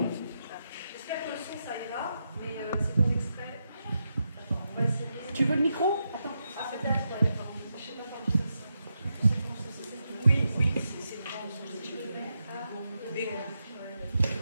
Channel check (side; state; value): both; inverted; correlation -0.85